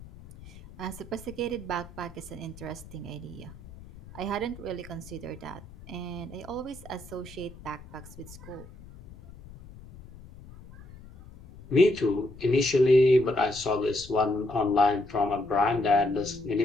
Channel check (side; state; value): left; noise; rumble, 18 dB below the sound